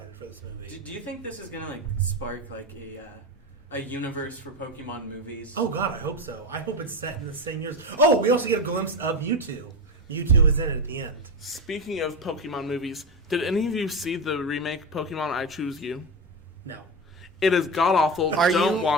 for this movie. Do you think this is gonna like spark like a universe for Pokemon movies? Oh God, I hope so. I hope it's set in the same years. Oh, we also get a glimpse of Mewtwo. Mewtwo is in it at the end. Speaking of Pokemon movies, did any of you see the remake Pokemon I Choose You? No. It is god awful. Don't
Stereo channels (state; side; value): normal; both; correlation 0.18